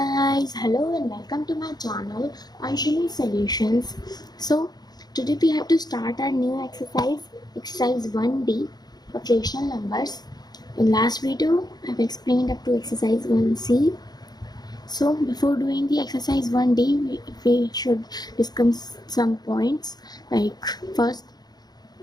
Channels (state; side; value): late; right; 0.19 ms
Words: hello and welcome to my channel Anshini Solutions. So today we have to start our new exercise 1D of rational numbers. In last video I've explained up to exercise 1C. So before doing the exercise 1D we should discuss some points. Like first,